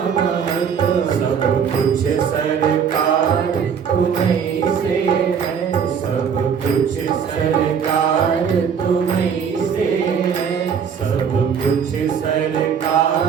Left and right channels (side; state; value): left; quieter; 7.2 dB